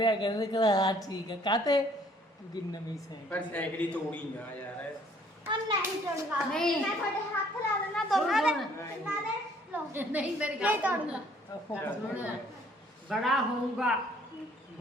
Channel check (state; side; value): normal; both; correlation 0.60